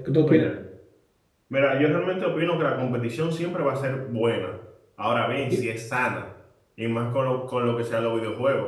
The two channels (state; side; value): identical; both; correlation 1.00